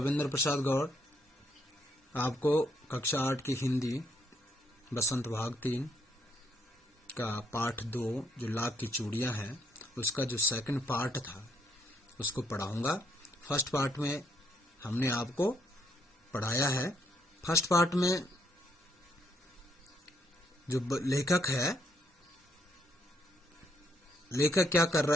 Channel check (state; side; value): normal; both; correlation 0.73